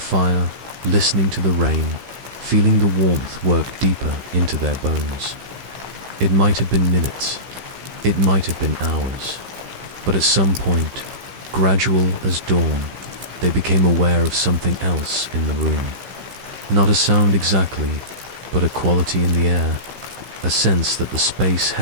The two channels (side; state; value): left; late; 15 ms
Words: listening to the rain, feeling the warmth work deeper into their bones. It might have been minutes, it might have been hours, but at some point, gradual as dawn, they became aware of something else in the room. Not a sound exactly, but a quality in the air, a sense that the space